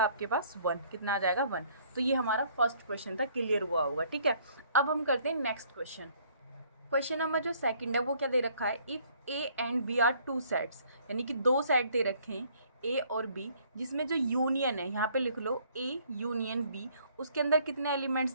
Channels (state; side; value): inverted; both; correlation -0.61